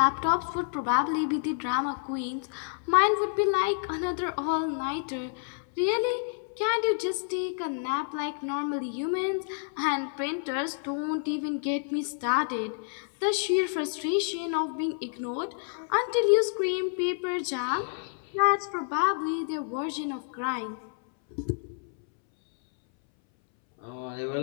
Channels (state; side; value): silent; right; 59 dB below the other